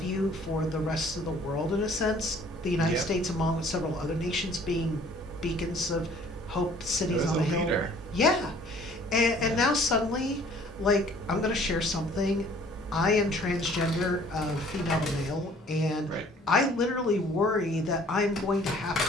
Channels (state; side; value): normal; both; correlation 0.55